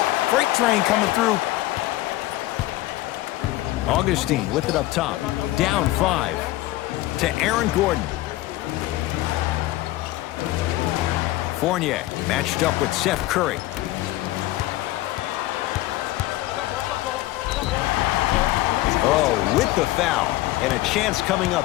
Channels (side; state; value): right; quieter; 17.1 dB